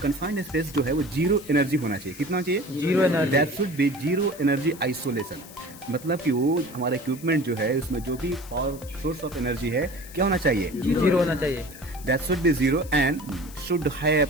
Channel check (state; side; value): noise; left; hiss, 18 dB below the sound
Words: स्पेस जो है वो जीरो एनर्जी होना चाहिए। कितना चाहिए? Zero energy. That should be zero energy isolation. मतलब कि वो हमारा इक्विपमेंट जो है उसमें जो भी पावर सोर्स ऑफ एनर्जी है क्या होना चाहिए? जीरो होना चाहिए। That should be zero and should have